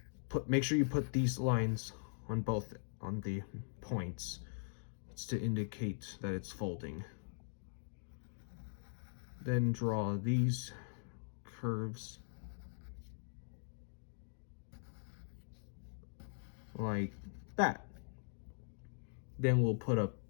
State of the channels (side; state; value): right; silent; digital silence